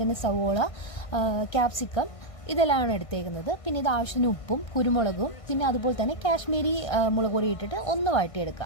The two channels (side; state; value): right; late; 1.5 ms